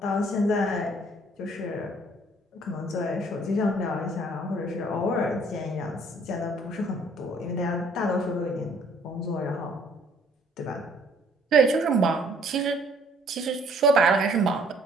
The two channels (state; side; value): normal; both; correlation 0.60